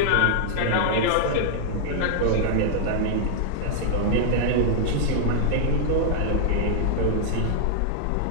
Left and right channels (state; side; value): different; both; correlation -0.01